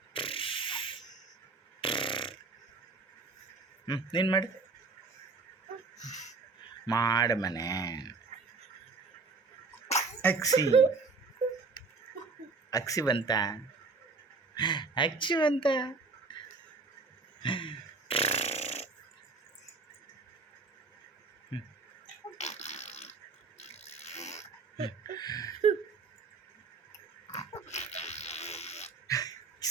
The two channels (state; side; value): quieter; left; 4.1 dB